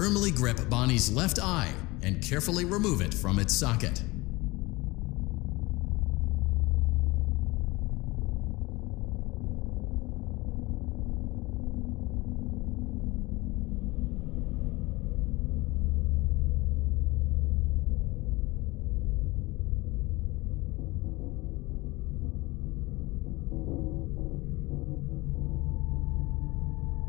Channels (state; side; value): quieter; right; 22.2 dB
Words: grip Bonnie's left eye and carefully remove it from its socket.